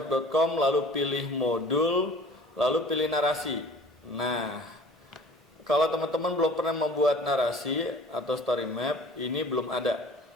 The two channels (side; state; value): both; normal; correlation 0.47